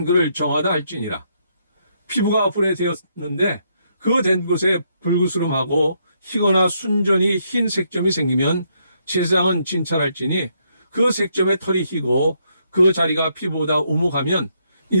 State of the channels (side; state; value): both; inverted; correlation -0.75